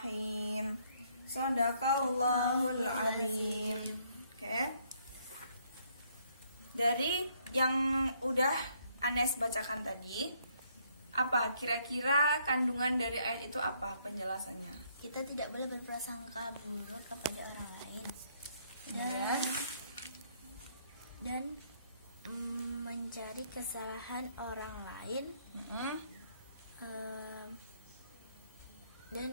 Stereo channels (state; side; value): inverted; both; correlation -0.69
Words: Shadaqallahul azim. Oke. Dari yang udah Anes bacakan tadi, apa kira-kira kandungan dari ayat itu, apa penjelasannya? Kita tidak boleh berprasangka buruk kepada orang lain Ya. dan mencari kesalahan orang lain.